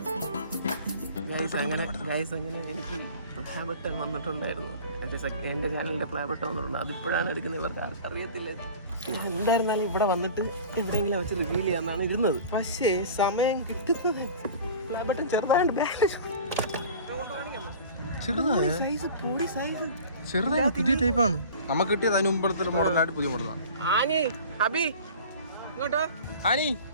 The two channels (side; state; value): both; inverted; correlation -0.41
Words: അങ്ങനെ എനിക്ക് പ്ലേ ബട്ടൺ വന്നിട്ടുണ്ടായിരുന്നു. എന്റെ ചാനലിന്റെ പ്ലേ ബട്ടൺ വന്നിട്ടുണ്ട്. അതിപ്പോഴാണ് എടുക്കുന്നത്. ഇവർക്ക് ആർക്കും അറിയത്തില്ല. എന്തായിരുന്നാലും ഇവിടെ വന്നിട്ട് എവിടെയെങ്കിലും വെച്ച് റിവീൽ ചെയ്യാന്നാണ് ഇരുന്നത്. പക്ഷേ സമയം കിട്ടുന്നത് പ്ലേ ബട്ടൺ ചെറുതായിട്ട് ചെറുതായ പുതിയ ടൈപ്പാണ് നമുക്ക് കിട്ടിയത്. അതിന് മുമ്പത്തെ മോഡലായിട്ട് പുതിയ മോഡലാണ്. ആനി ഹബി ഇങ്ങോട്ടോ. ആനി